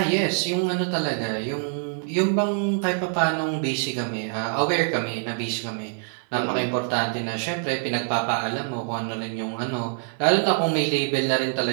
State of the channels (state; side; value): silent; left; 62 dB below the other